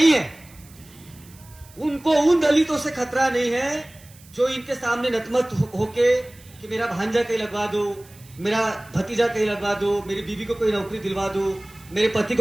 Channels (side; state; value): right; noise; hiss, 24 dB below the sound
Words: है, उनको उन दलितों से खतरा नहीं है जो इनके सामने नतमत होके कि मेरा भांजा कहीं लगवा दो, मेरा भतीजा कहीं लगवा दो, मेरी बीवी को कोई नौकरी दिलवा दो, मेरे पति